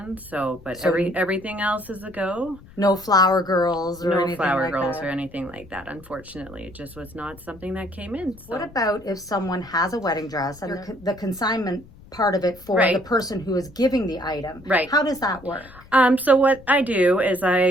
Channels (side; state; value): left; noise; rumble, 22 dB below the sound